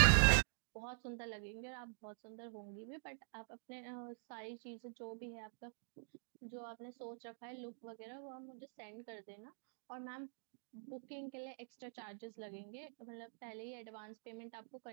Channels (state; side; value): silent; left; digital silence